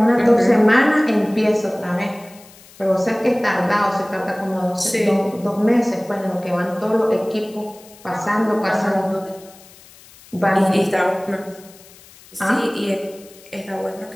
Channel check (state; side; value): noise; left; hiss, 23 dB below the sound